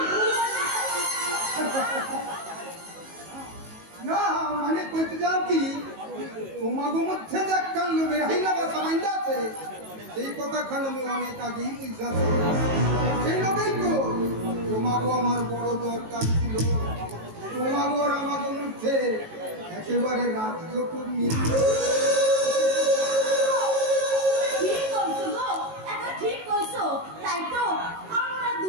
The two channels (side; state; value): left; late; 19 ms